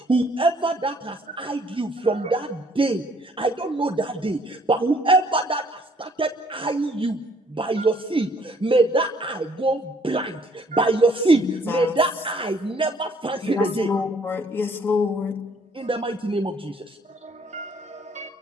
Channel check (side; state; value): both; normal; correlation 0.62